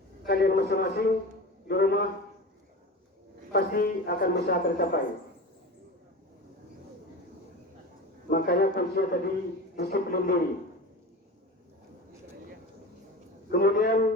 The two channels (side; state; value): both; normal; correlation 0.30